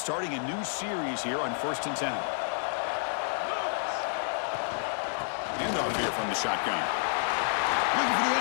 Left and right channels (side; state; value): right; silent; digital silence